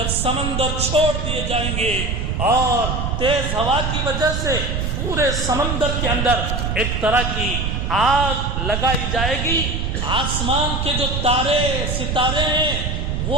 سمندر چھوڑ دیے جائیں گے اور تیز ہوا کی وجہ سے پورے سمندر کے اندر ایک طرح کی آگ لگائی جائے گی، آسمان کے جو تارے ستارے ہیں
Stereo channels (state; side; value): noise; right; rumble, 1 dB below the sound